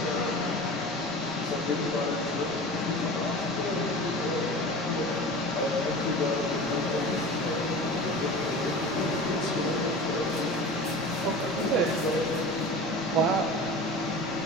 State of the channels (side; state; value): right; noise; rumble, 23 dB below the sound